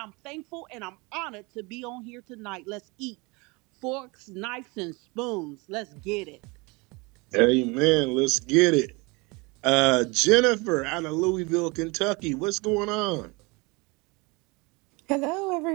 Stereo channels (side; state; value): left; quieter; 26.9 dB